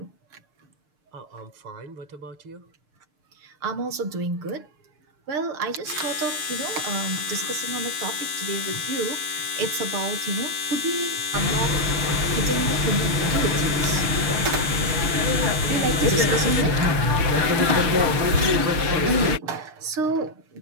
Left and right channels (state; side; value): late; left; 6.6 ms